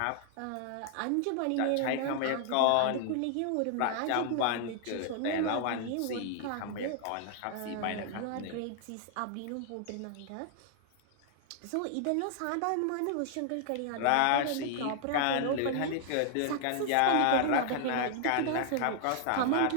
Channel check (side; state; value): both; different; correlation 0.00